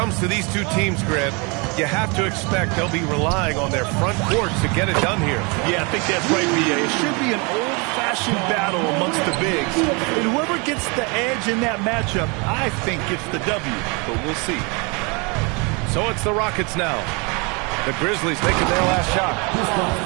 to these two teams, Grant, you have to expect they'll be relying on their front court to get it done here. Yeah, I think that's right, B.A. It should be an old-fashioned battle amongst the bigs. And whoever gets the edge in that matchup, I think gets the W. But we'll see. So it's the Rockets now. The Grizzlies taking their last shot.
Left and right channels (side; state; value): left; quieter; 30.4 dB